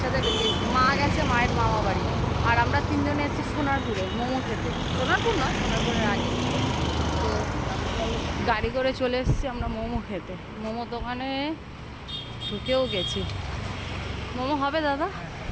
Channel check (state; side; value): identical; both; correlation 1.00